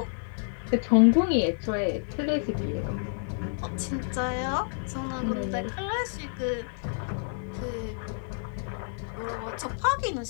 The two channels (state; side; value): silent; right; digital silence